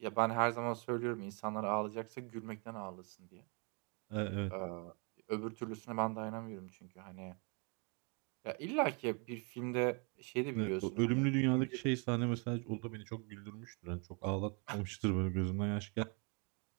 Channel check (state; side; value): quieter; left; 34.4 dB